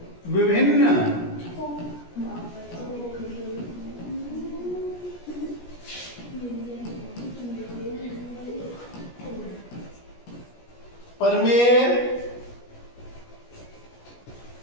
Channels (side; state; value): right; late; 17 ms